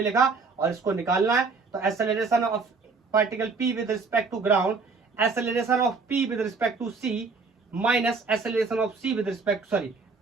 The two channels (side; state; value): left; quieter; 4.5 dB